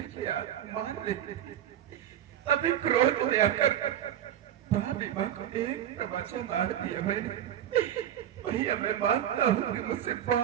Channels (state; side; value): quieter; left; 10.8 dB